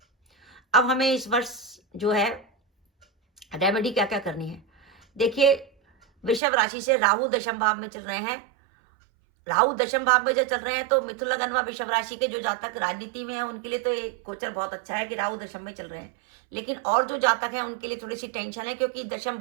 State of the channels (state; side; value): drops out; left; at 6.4 s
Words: अब हमें इस वर्ष जो है रेमेडी क्या क्या करनी है। देखिए, वृषभ राशि से राहु दशम भाव में चल रहे हैं। राहु दशम भाव में जब चल रहे हैं तो मिथुन लगन व वृषभ राशि के जो जातक राजनीति में है उनके लिए तो ये गोचर बहुत अच्छा है कि राहु दशम में चल रहे हैं। लेकिन और जो जातक हैं उनके लिए थोड़ी सी टेंशन है, क्योंकि दशम